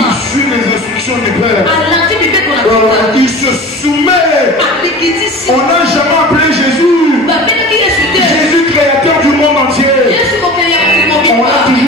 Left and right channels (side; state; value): both; normal; correlation 0.37